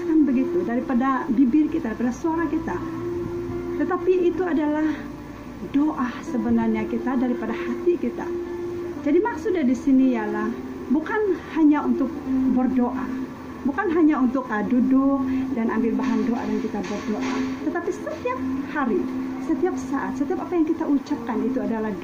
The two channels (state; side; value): identical; both; correlation 1.00